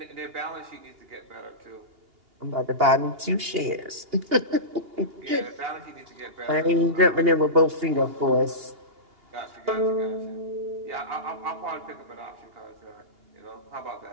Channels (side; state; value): left; late; 2.8 ms